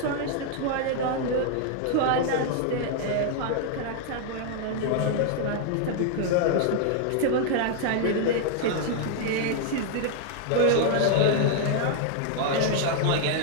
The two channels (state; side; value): different; both; correlation 0.00